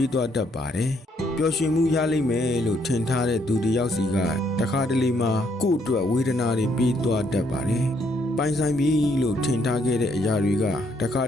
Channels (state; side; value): normal; both; correlation 0.71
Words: ေးသွားတတ်ပါတယ်ပျော်ရွှင်မှုရလိမ့်မယ်လို့ထင်ထားတဲ့သူတယောက်စီကတခါတလေမှာကို့အတွက်ဝေဒနာတွေပေးသွားတတ်ပါတယ်ပိုင်ဆိုင်ပြီလို့ထင်ထားခဲ့တဲ့အရာတွေကတခါ